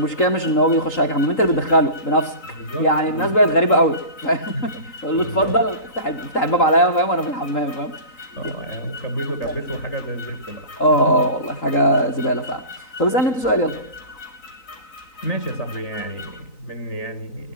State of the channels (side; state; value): right; late; 3.9 ms